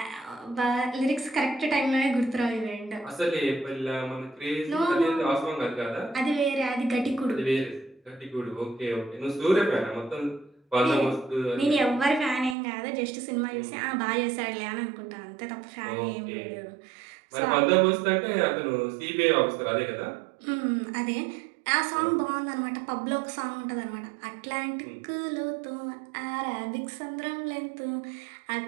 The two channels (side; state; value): left; drops out; at 12.6 s